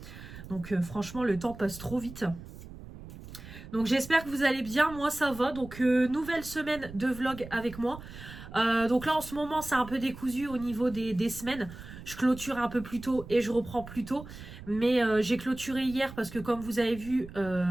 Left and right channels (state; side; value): noise; right; rumble, 14 dB below the sound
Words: Donc franchement, le temps passe trop vite. Donc j'espère que vous allez bien, moi ça va. Donc nouvelle semaine de vlog avec moi. Donc là en ce moment c'est un peu décousu au niveau des semaines. Je clôture un peu plus tôt et je reprends plus tôt. Mais j'ai clôturé hier parce que comme vous avez vu,